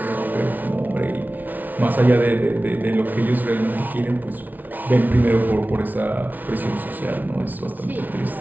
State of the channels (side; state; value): left; late; 0.081 ms